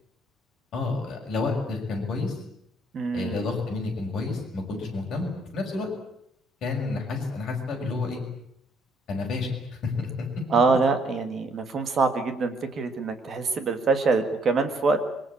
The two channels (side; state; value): both; normal; correlation 0.67